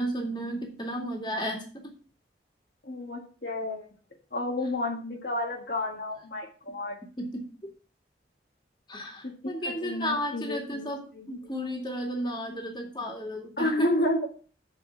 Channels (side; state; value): both; normal; correlation 0.29